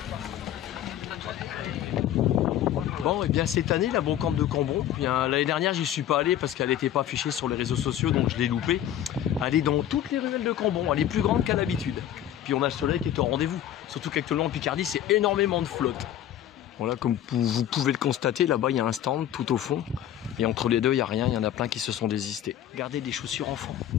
Bon, et bien cette année, la brocante de Cambon, l'année dernière, j'y suis pas allé parce qu'elle n'était pas affichée sur les réseaux sociaux, donc je l'ai loupée. Elle est dans toutes les ruelles de Cambon, elle est plus grande qu'à l'habitude. Puis on a le soleil qui est au rendez-vous, surtout qu'actuellement en Picardie, c'est énormément de flotte. Voilà, comme vous pouvez le constater, là-bas, il y a un stand tout au fond. Et entre les deux, il n'y a rien, il y en a plein qui se sont désistés. Regardez des chaussures enfants.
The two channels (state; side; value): quieter; right; 11.3 dB